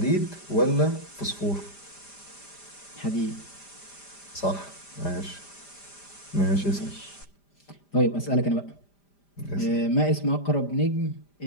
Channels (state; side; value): late; right; 5.0 ms